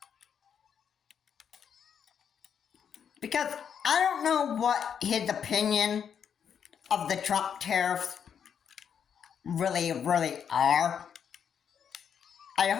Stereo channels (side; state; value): right; quieter; 7.8 dB